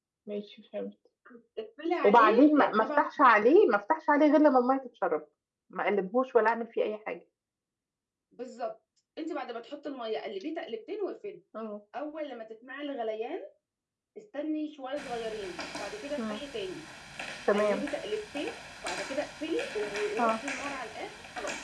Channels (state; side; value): identical; both; correlation 1.00